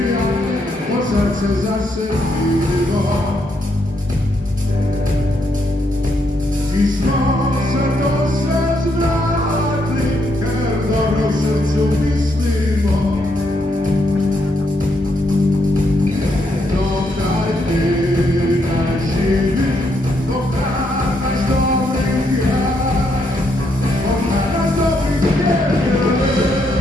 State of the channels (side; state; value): both; normal; correlation 0.77